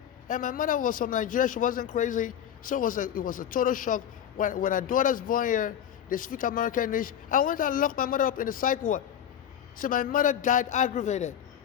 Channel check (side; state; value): right; quieter; 9.6 dB